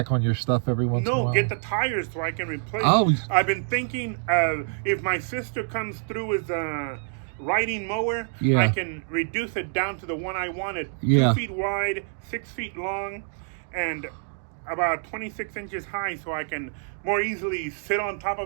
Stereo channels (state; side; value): silent; left; digital silence